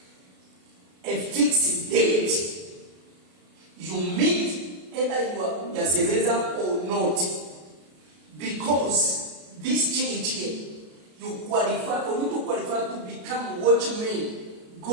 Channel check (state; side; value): late; left; 33 ms